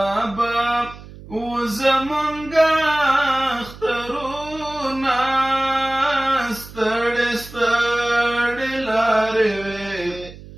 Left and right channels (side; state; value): right; noise; hum, 17 dB below the sound